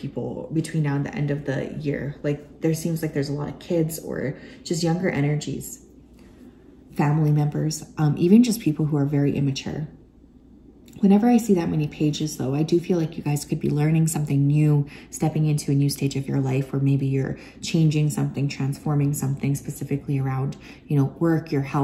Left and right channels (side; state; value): both; identical; correlation 1.00